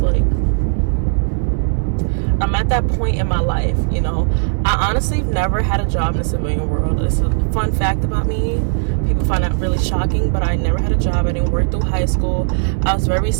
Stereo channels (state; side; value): silent; left; 68 dB below the other